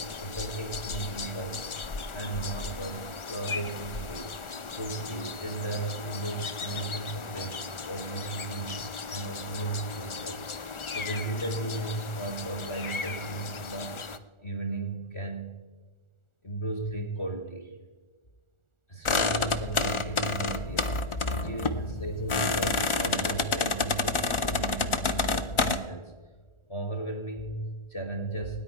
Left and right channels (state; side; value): late; right; 1.4 ms